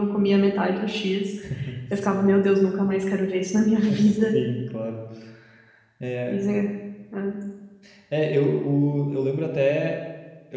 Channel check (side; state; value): both; identical; correlation 1.00